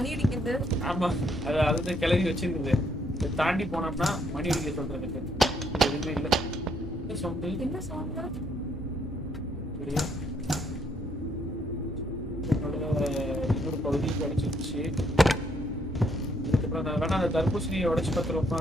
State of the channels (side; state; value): both; normal; correlation 0.71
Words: அடிக்குது? ஆமா, அது கிளறி வச்சிருக்குது. இதை தாண்டி போனோம்னா மணி அடிக்க சொல்றதுக்கு எதுவுமே இல்லை. என்ன சவுண்ட்? இன்னொரு பகுதி கிடைச்சிருச்சு. இதுக்கப்புறம் நான் வேணா அந்த தர்பூசணியை உடைச்சு பார்த்துருவோம்னா